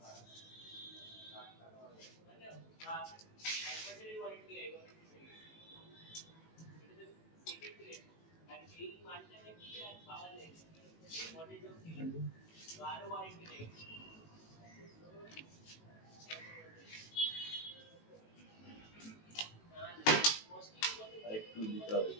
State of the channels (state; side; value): late; right; 18 ms